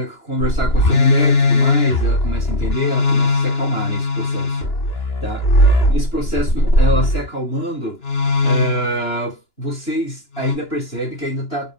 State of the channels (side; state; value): right; late; 2.9 ms